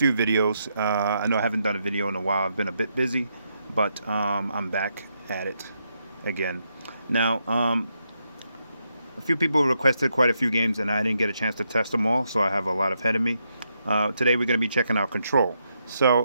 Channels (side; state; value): both; inverted; correlation -0.81